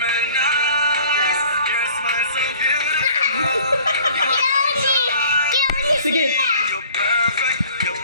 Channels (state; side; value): inverted; both; correlation -0.51